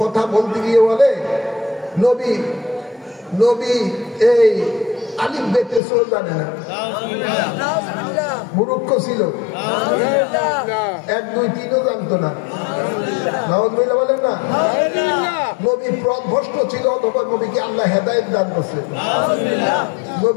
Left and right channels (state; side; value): drops out; right; at 5.8 s